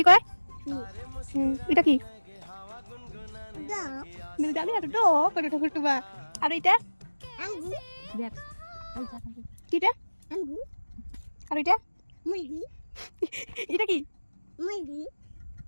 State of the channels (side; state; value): both; inverted; correlation -1.00